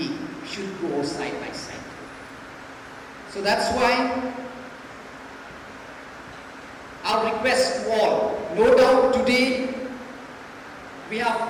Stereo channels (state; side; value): identical; both; correlation 1.00